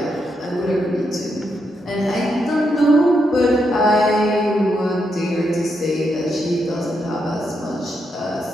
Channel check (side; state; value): both; normal; correlation 0.81